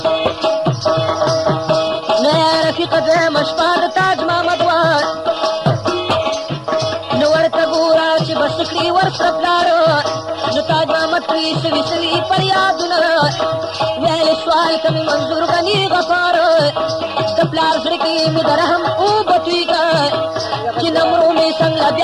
نه رفیقه دویمه شپه د تاج محمد وه نو ورته ګوره چې بس کړي ورسره پلاره نو تاج محمد پرې سوي فریادونه ویلې سوال ته مې منظور غني غفار د پلار زړه کې مې د رحم اوبه تویږه چې نمرو مې څنګه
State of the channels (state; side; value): identical; both; correlation 1.00